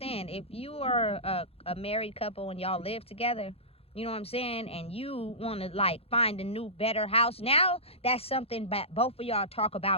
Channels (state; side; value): late; right; 0.29 ms